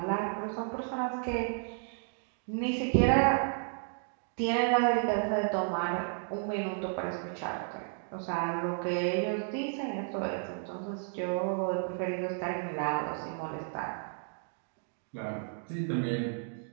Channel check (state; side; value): silent; left; 56 dB below the other